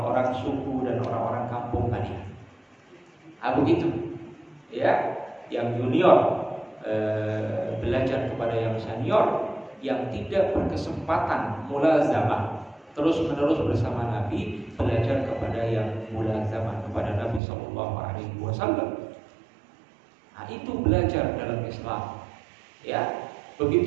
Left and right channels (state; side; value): drops out; left; at 17.4 s